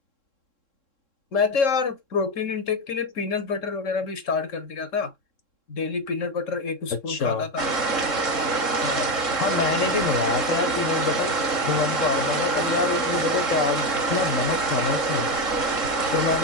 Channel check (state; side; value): late; right; 3.7 ms